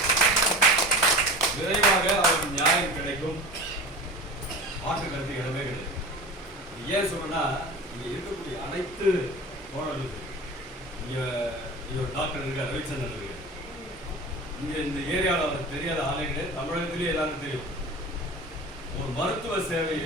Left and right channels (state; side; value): normal; both; correlation 0.34